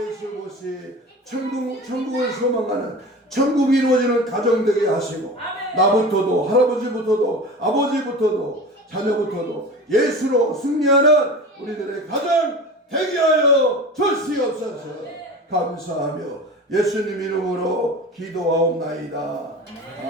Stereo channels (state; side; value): normal; both; correlation 0.33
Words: 모시 천국을 소망하는, 천국이 이루어지는 가정 되게 하시고 나부터도, 할아버지부터도, 아버지부터도, 자녀부터도 예수로 승리하는 우리들의 가정 되게 하여 주시옵소서. 감사하며 예수님 이름으로 기도하옵나이다.